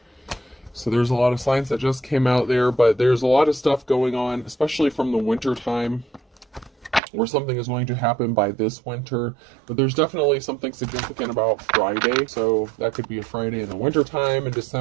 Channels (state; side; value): drops out; left; at 7.0 s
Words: So there's a lot of signs that just came out there, but there's a lot of stuff going on, especially from the winter time, where something is going to happen by this winter. But there's definitely something significant about Friday. So that could be a Friday in the winter time. In